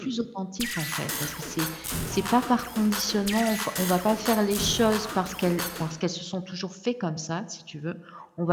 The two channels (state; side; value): identical; both; correlation 1.00